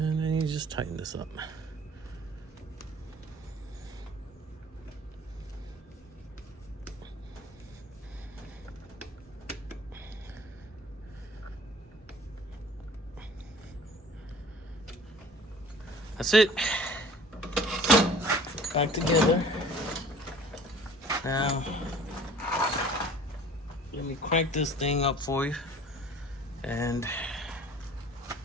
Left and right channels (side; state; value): both; normal; correlation 0.48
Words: then you just tighten this up. That's it. Back together. Now, let me crank this thing up for you. And